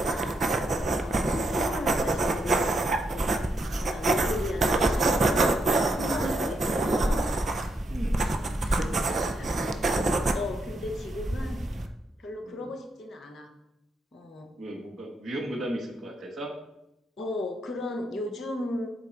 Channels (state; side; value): normal; both; correlation 0.79